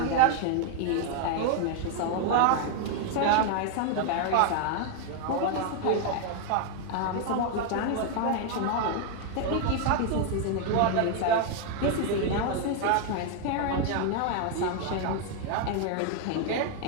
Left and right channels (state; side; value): different; both; correlation 0.00